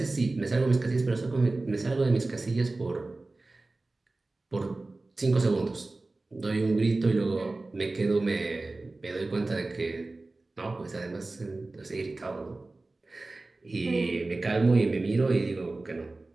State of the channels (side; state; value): left; quieter; 3.2 dB